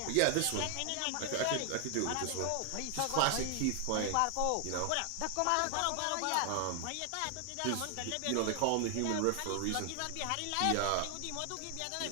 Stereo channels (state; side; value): different; both; correlation 0.00